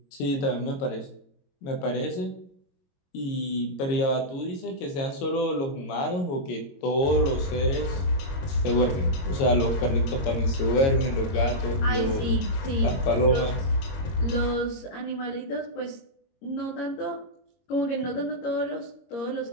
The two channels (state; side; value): late; right; 22 ms